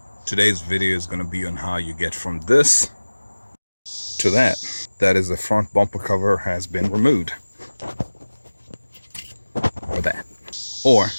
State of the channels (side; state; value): both; inverted; correlation -1.00